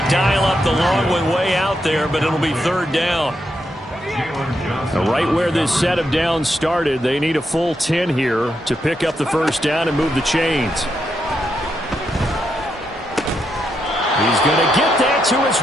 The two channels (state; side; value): normal; both; correlation 0.82